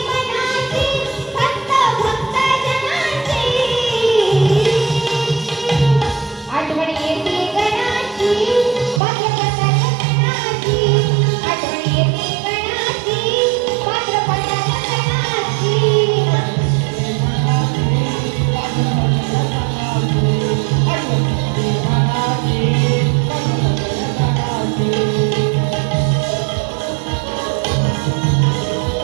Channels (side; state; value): left; drops out; at 9.0 s